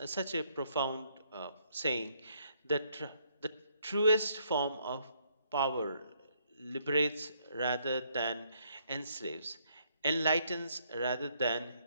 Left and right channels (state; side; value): inverted; both; correlation -0.71